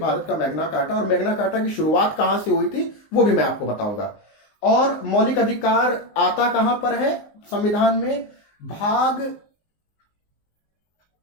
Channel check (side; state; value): right; late; 19 ms